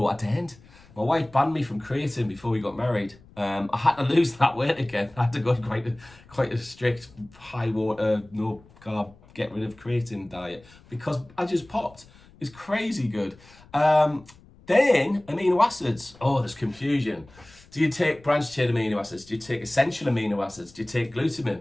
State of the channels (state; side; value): noise; left; rumble, 25 dB below the sound